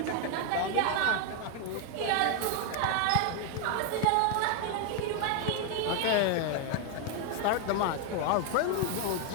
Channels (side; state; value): both; different; correlation 0.01